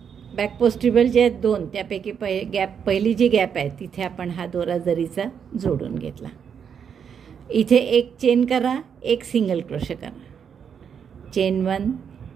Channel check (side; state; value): left; quieter; 7.4 dB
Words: बॅक पोस्ट ट्रिबल जे आहेत 2, त्यापैकी पहिली जी गॅप आहे तिथे आपण हा दोरा जरीचा जोडून घेतला. इथे एक चेन करा, एक सिंगल क्रोशे करा. चेन 1,